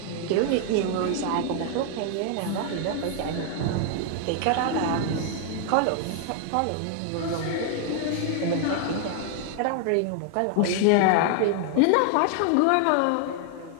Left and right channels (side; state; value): both; different; correlation 0.00